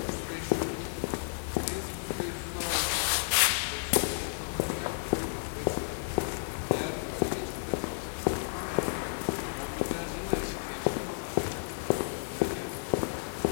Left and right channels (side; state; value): right; silent; 56 dB below the other